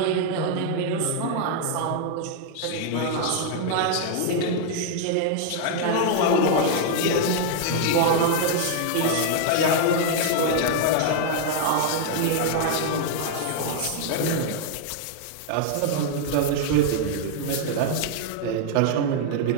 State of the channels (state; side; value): different; both; correlation -0.01